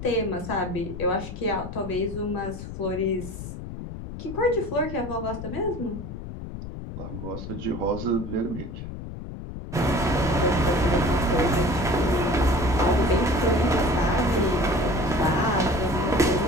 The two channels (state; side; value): noise; left; rumble, 9 dB below the sound